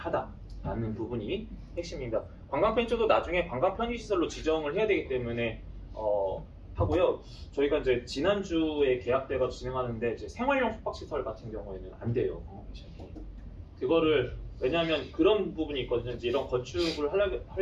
부분이 핵심입니다. 관광 펜션도 나중에 관광 편의시설로 지정을 해야 되기 때문에 하고요. 저희가 이제 지난주에 계약돼서 진행하는데 이제 생활용 숙박시설 같은 경우에는 안 돼요. 그거를 왜냐하면 그런 부분이 있거든요. 이제 이런 건축을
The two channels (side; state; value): both; identical; correlation 1.00